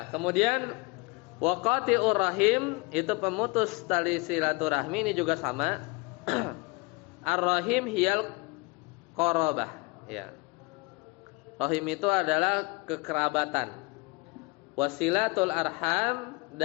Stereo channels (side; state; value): right; quieter; 27.0 dB